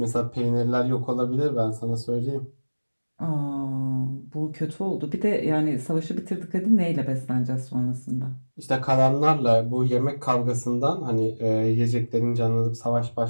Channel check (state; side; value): inverted; both; correlation -1.00